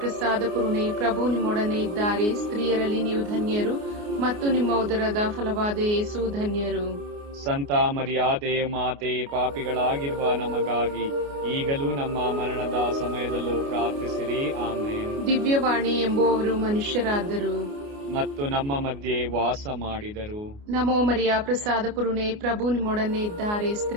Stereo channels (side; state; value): left; late; 29 ms